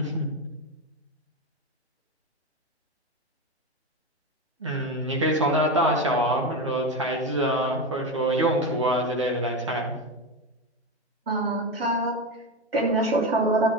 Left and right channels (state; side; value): normal; both; correlation 0.17